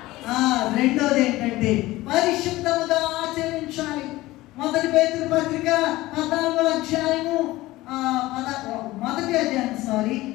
రెండోది ఏంటంటే పరిశుద్ధముగా ఆచరించాలి. మొదటి పేతురు పత్రిక 14వ అధ్యాయము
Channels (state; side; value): quieter; right; 18.1 dB